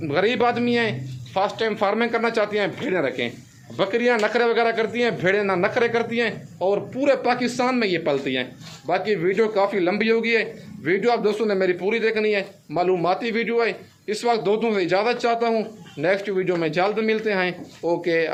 गरीब आदमी हैं, फर्स्ट टाइम फार्मिंग करना चाहती हैं भेड़ें रखें। बकरियां नखरे वगैरह करती हैं, भेड़ें ना नखरे करती हैं और पूरे पाकिस्तान में ये पलती हैं। बाकी वीडियो काफ़ी लंबी होगी है, वीडियो आप दोस्तों ने मेरी पूरी देखनी है, मालूमाती वीडियो है। इस वक्त दोस्तों से इजाज़त चाहता हूँ, नेक्स्ट वीडियो में जल्द मिलते हैं। ओके,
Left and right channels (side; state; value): both; identical; correlation 1.00